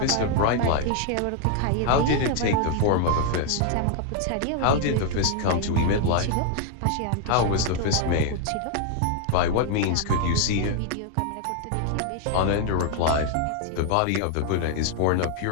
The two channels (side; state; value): both; different; correlation 0.01